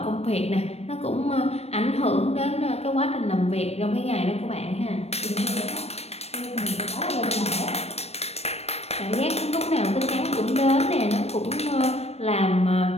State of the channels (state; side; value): late; right; 0.31 ms